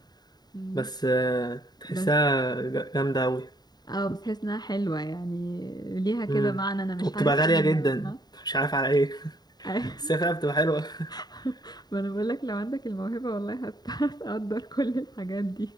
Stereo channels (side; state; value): right; late; 0.20 ms